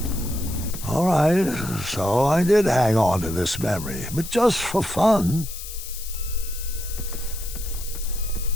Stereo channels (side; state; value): left; noise; hiss, 11 dB below the sound